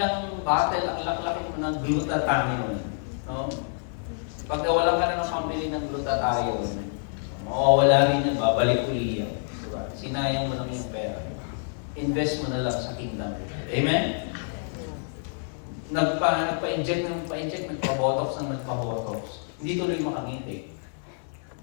battle, ang laki-laki mo ng glutathione. No? Pag nawalan ka na ng pambili ng glutathione, wala rin yan, babalik uli yan. Diba? Sinayang mo lang yung pera. Invest mo na lang sa kingdom. Amen? Nagpa-inject, nagpa-botox. Hindi tuloy makangiti.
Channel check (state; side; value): silent; right; digital silence